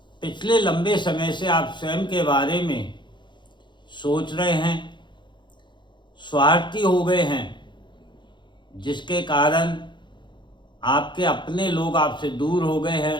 पिछले लंबे समय से आप स्वयं के बारे में सोच रहे हैं, स्वार्थी हो गए हैं, जिसके कारण आपके अपने लोग आपसे दूर हो गए हैं।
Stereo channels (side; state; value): right; late; 0.22 ms